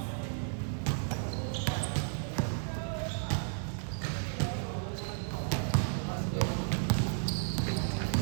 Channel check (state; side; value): silent; left; digital silence